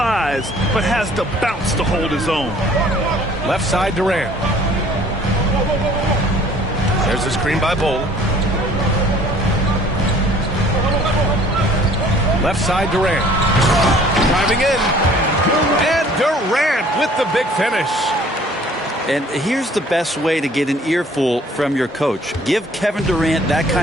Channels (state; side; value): normal; both; correlation 0.54